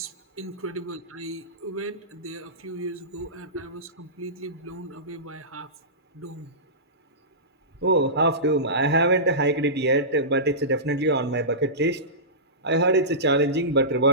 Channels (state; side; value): normal; both; correlation -0.20